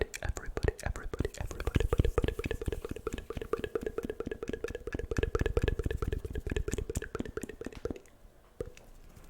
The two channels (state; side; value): identical; both; correlation 1.00